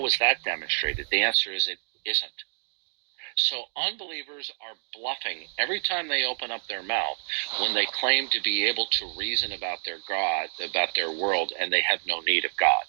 is that demonstrated? The answer is it isn't. So unbelievers are bluffing every time they open up their mouth when they claim to be able to reason about their God, about their world, and they have no need of God.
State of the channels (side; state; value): left; silent; digital silence